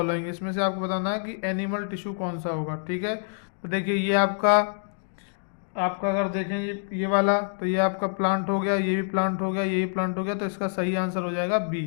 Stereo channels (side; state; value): right; silent; digital silence